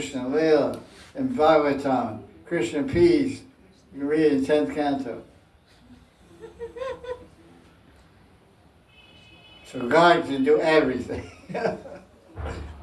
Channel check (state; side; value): identical; both; correlation 1.00